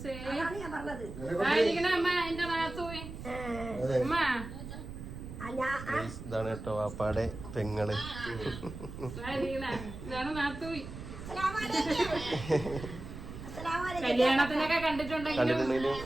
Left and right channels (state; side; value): noise; right; rumble, 11 dB below the sound